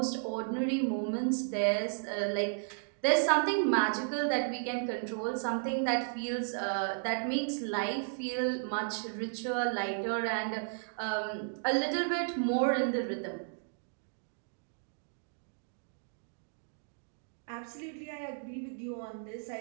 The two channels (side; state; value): left; silent; digital silence